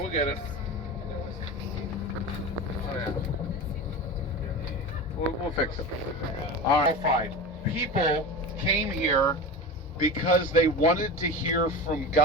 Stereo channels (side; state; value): both; normal; correlation 0.27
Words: yeah. We'll fix it. All right. People came here because they wanted to hear from